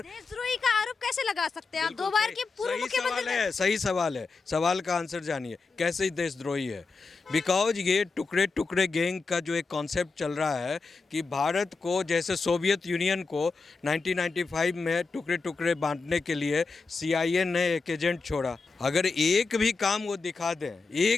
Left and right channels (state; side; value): quieter; right; 4.3 dB